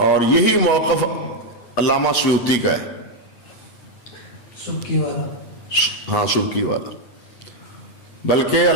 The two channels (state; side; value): late; right; 8.5 ms